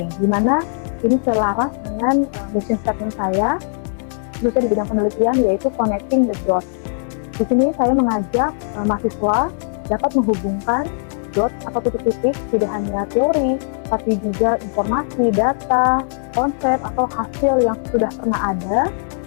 di mana ini selaras dengan mission statement saya khususnya di bidang penelitian yaitu connecting the dots. Di sini saya mengajak mahasiswa dapat menghubungkan dot atau titik-titik tidak hanya teori, tapi juga informasi, data, konsep atau hasil yang sudah pernah ada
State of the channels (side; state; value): right; silent; digital silence